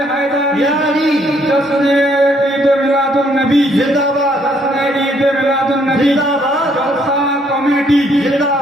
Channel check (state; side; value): normal; both; correlation 0.68